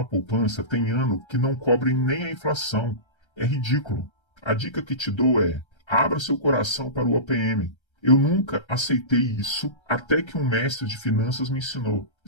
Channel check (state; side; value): late; right; 1.3 ms